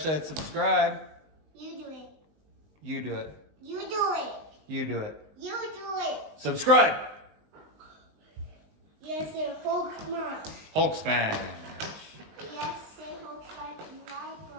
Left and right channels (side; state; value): left; late; 19 ms